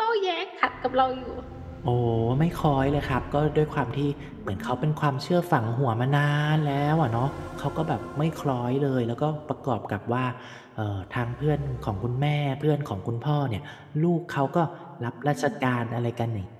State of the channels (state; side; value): identical; both; correlation 1.00